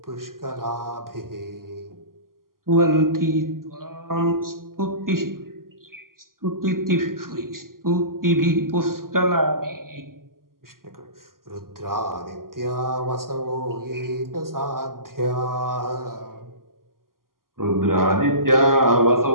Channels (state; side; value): late; left; 0.91 ms